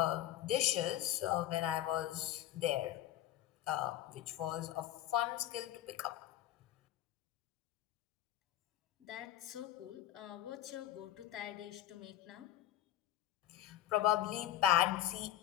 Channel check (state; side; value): quieter; right; 12.7 dB